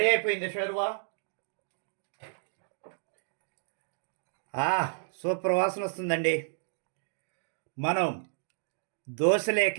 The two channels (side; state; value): left; silent; digital silence